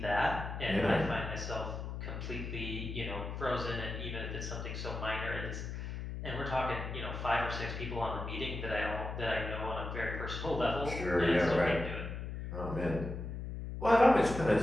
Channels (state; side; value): noise; left; hum, 6 dB below the sound